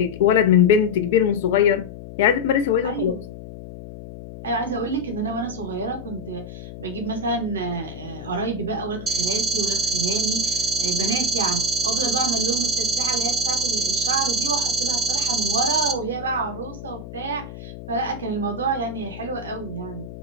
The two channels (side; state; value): left; noise; hum, 13 dB below the sound